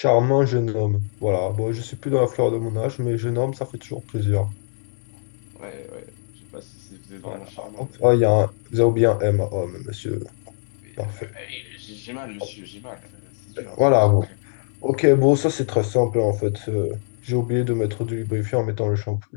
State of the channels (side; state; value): right; silent; digital silence